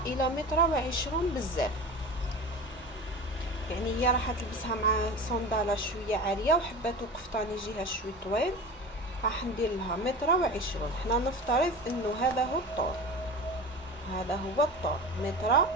الى متر و20 بزاف. يعني هي راح تلبسها مع صنداله شويه عاليه وحباتو قفطان يجيها شوي طويل، راح ندير لها متر و20. حنا نفترض انه هذا هو الطول، هذا هو الطول متر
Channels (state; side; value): normal; both; correlation 0.32